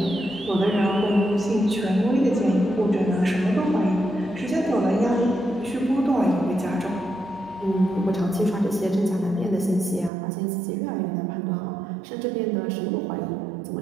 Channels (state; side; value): drops out; left; at 10.1 s